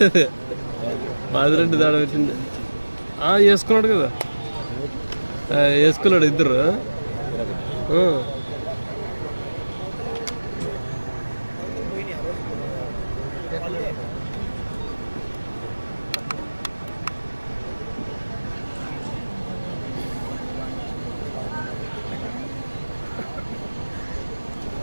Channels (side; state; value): both; inverted; correlation -1.00